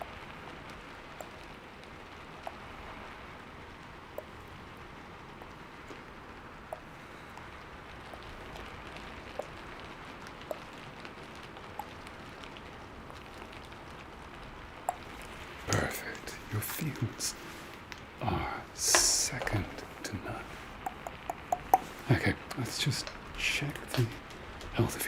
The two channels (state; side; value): identical; both; correlation 1.00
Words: Perfect. Your fields are second to none. Okay, let's just check the health of